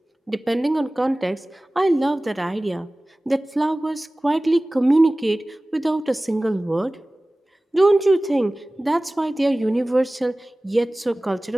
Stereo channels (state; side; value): normal; both; correlation 0.98